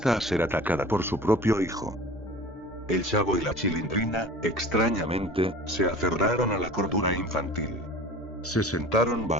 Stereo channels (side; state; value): both; normal; correlation 0.40